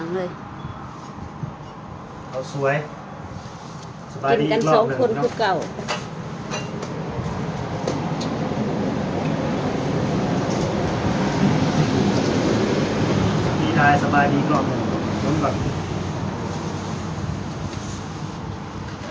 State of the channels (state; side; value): identical; both; correlation 1.00